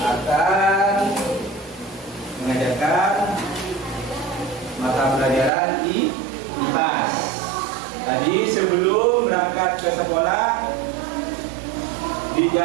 akan mengajarkan mata pelajaran IPAS. Tadi sebelum berangkat ke sekolah di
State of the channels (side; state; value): left; drops out; at 5.5 s